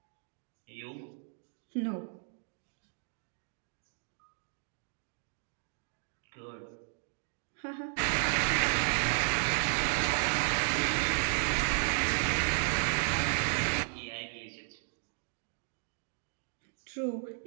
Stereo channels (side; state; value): left; silent; 55 dB below the other